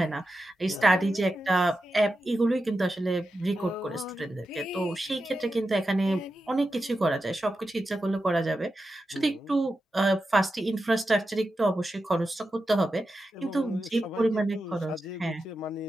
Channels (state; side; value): normal; both; correlation 0.90